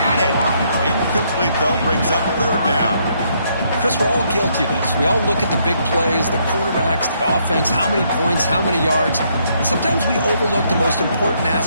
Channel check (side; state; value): both; inverted; correlation -0.72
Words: it. Incomplete, though, brings up third down. Chris, we're all guilty of this. We all look at the big plays, the quarterbacks, the offense, how many points, how many yards. And sometimes we overlook the most important